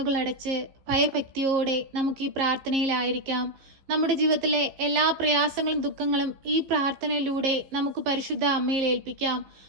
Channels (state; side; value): late; left; 15 ms